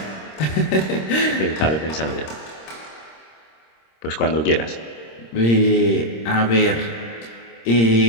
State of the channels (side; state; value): right; late; 26 ms